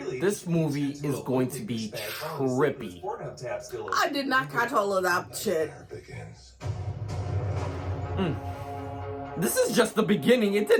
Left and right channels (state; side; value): identical; both; correlation 1.00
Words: This movie is going to be trippy. I did not catch all of that shit. There begins. This is just the beginning. It